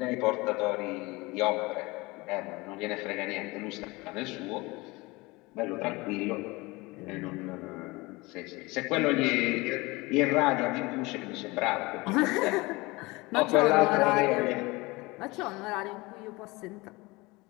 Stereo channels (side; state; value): right; quieter; 23.2 dB